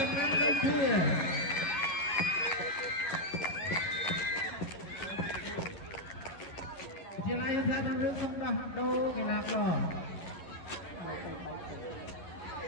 ំណាំលេខជាជាឡាយថាដល់រឿងសំដោះដូរកីឡាករ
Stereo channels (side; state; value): right; late; 11 ms